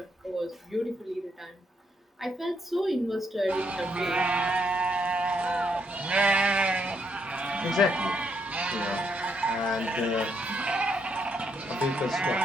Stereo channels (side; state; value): both; normal; correlation 0.75